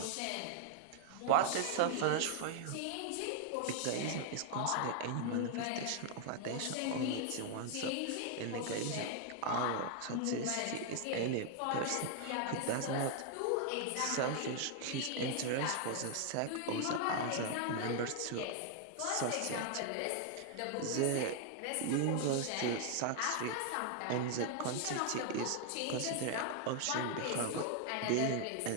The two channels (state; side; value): different; both; correlation 0.00